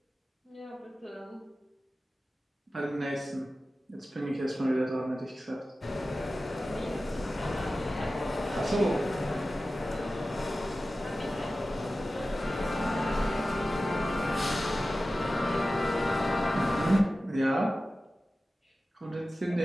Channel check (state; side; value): normal; both; correlation 0.95